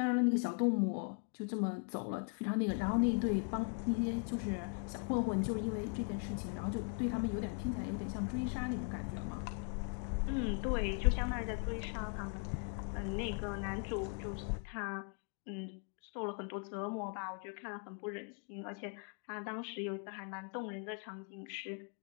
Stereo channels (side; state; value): right; quieter; 38.4 dB